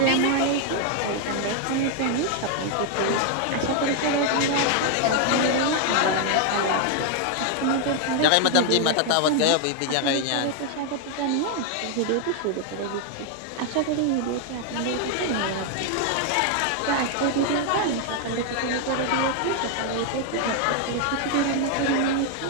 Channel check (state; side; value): different; both; correlation 0.00